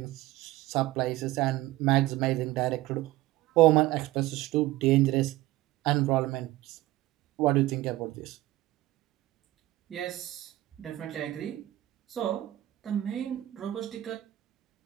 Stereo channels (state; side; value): quieter; left; 16.7 dB